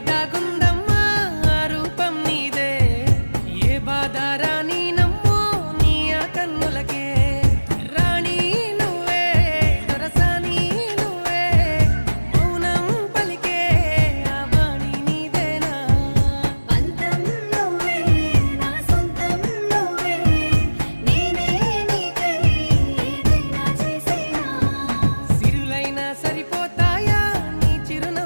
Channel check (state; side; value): inverted; both; correlation -1.00